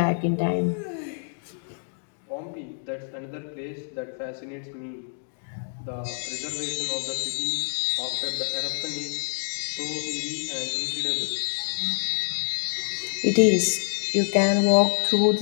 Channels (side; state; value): right; silent; digital silence